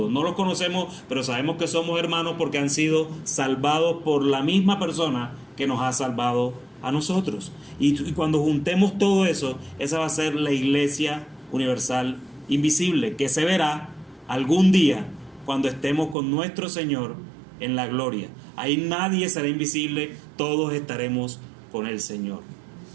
No los conocemos, pero sabemos que somos hermanos porque han sido salvados por la misma persona que nos ha salvado a nosotros. Y cuando juntemos todo eso, esa va a ser la iglesia universal invisible, que se verá algún día cuando estemos con nuestro Señor en la gloria. Ahí nadie será invisible, todos estaremos con el Señor.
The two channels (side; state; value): left; drops out; at 16.2 s